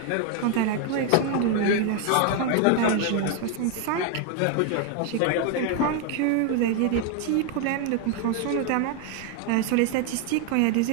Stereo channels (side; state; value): both; different; correlation 0.01